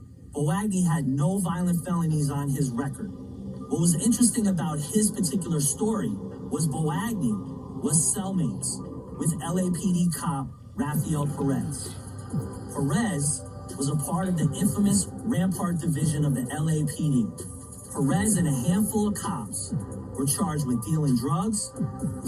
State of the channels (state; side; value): identical; both; correlation 1.00